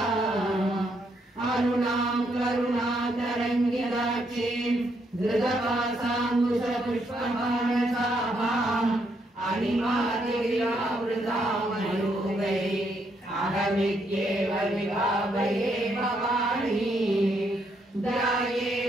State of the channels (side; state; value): both; normal; correlation 0.75